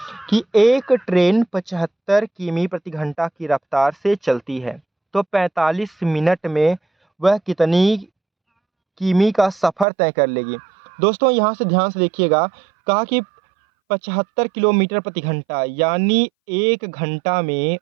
कि एक ट्रेन 75 किमी प्रति घंटा की रफ्तार से चलती है, तो 45 मिनट में वह कितनी किमी का सफ़र तय कर लेगी? दोस्तों यहाँ से ध्यान से देखिएगा, कहा कि 75 किलोमीटर प्रति घंटा, यानी एक घंटा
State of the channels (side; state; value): left; drops out; at 9.9 s